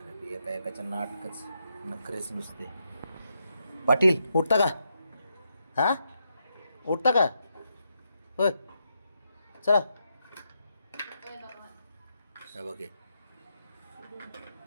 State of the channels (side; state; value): both; inverted; correlation -0.82